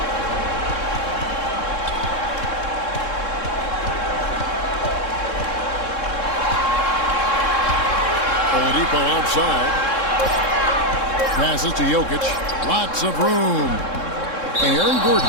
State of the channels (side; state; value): right; late; 3.7 ms